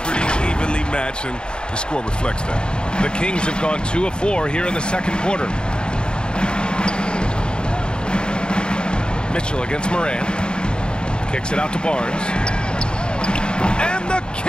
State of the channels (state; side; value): late; right; 0.049 ms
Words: pretty evenly matched, and the score reflects that. The Kings have gone 2 of 4 here in the second quarter. Mitchell against Morant. Kicks it out to Barnes. And the